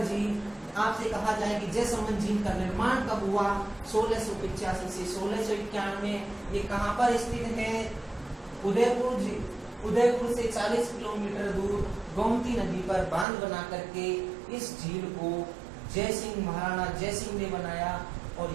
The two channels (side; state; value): left; drops out; at 13.2 s